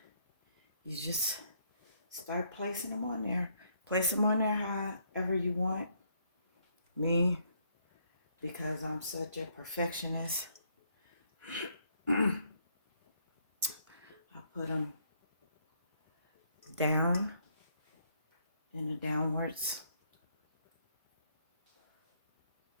just start placing them on there. Place them on there however you want. Me, because I'm such a perfectionist, I put them down in the downwards,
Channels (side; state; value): both; inverted; correlation -0.70